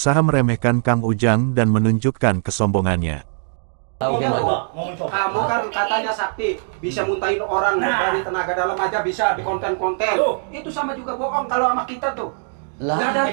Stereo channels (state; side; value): silent; left; digital silence